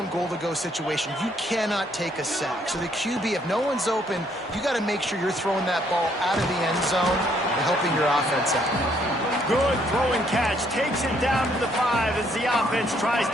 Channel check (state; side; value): normal; both; correlation 0.68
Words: goal-to-go situation. You cannot take a sack. So the QB, if no one's open, you got to make sure you're throwing that ball out of the end zone and helping your offense out. Good throw and catch. Takes it down to the 5 as the offense tries